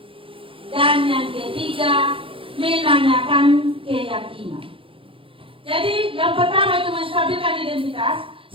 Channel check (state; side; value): late; left; 0.26 ms